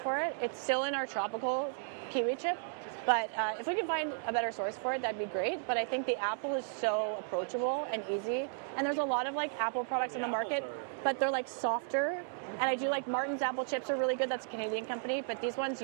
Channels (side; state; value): left; silent; digital silence